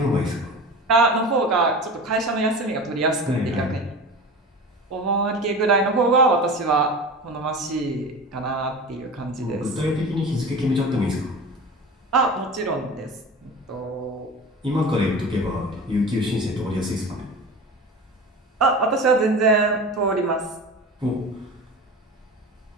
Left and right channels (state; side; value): normal; both; correlation 0.32